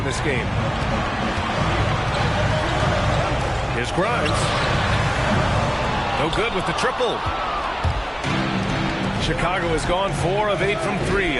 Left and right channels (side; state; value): both; identical; correlation 1.00